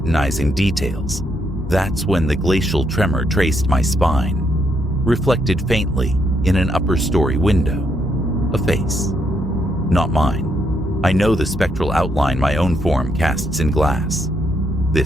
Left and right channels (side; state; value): both; normal; correlation 0.76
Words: details, that's when the glacial tremor traced my spine, reflected faintly in an upper story window. A face. Not mine. I know the spectral outline my own form casts in glass.